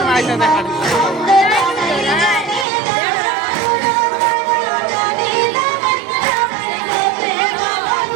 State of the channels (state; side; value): drops out; left; at 2.7 s